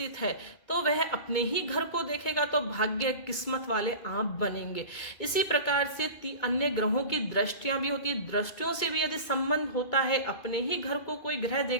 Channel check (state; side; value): late; right; 2.2 ms